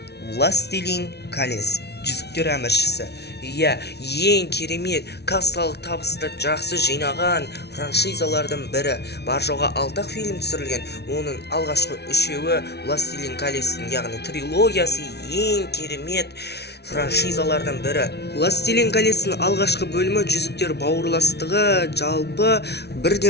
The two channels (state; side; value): late; right; 0.49 ms